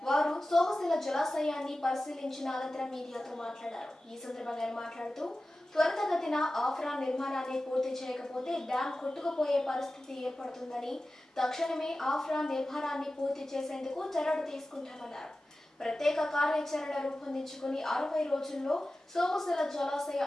వారు సోమశిల జలాశయాన్ని పరిశీలించిన అనంతరం మీడియాతో మాట్లాడారు. ఈ సందర్భంగా మాట్లాడుతూ త్వరితగతిన ఆఫ్రా నిర్మాణాన్ని పూర్తి చేయకపోతే డ్యాం కొట్టుకుపోయే పరిస్థితి ఏర్పడుతుందని, తక్షణమే ఆఫ్రా నిర్మాణాన్ని పూర్తి చేసేందుకు చర్యలు తీసుకుంటామన్నారు. ప్రత్యేక కార్యాచరణ రూపొందించుకుని 60 రోజుల్లో సోమశిల జలాశయ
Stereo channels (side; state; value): both; normal; correlation 0.95